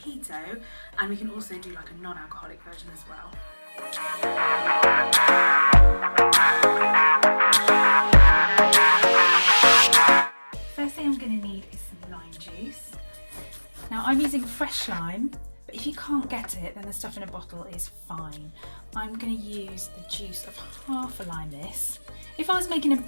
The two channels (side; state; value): both; inverted; correlation -1.00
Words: and we can also do like a non-alcoholic version as well. First thing I'm going to need is some lime juice. Now I'm using fresh lime, but if you can't get it then the stuff in a bottle is fine. I'm going to use the juice of half a lime this. If I was making a